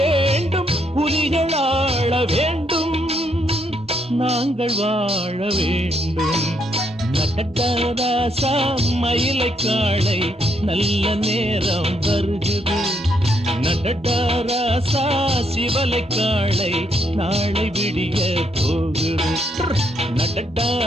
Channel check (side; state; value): both; normal; correlation 0.75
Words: புலிகள் ஆள வேண்டும், நாங்கள் வாழ வேண்டும். நட்டராசா மயிலை காளை நல்ல நேரம் வருகிறது. நடராசா சிவலை காளை நாளை விடிய போகுது.